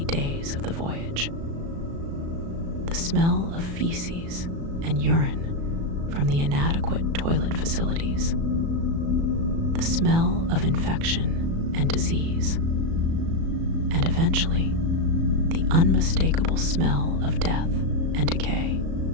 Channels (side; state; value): left; late; 36 ms